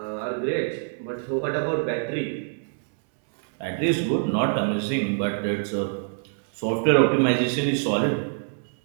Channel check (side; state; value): left; silent; 61 dB below the other